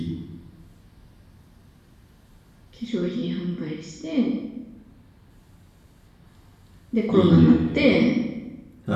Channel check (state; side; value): identical; both; correlation 1.00